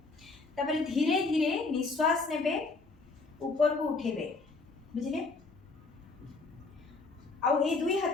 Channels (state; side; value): quieter; right; 3.8 dB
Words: तापरे धीरे धीरे निश्वास नेबे, ऊपर को उठेबे, बुझिले। आउ ए दुई